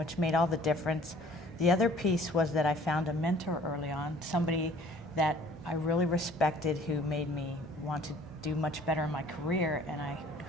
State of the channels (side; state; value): both; normal; correlation 0.54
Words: made all the difference. The other piece was that I found a mentor early on, somebody that I really respected who made me want to do much better in my career, and I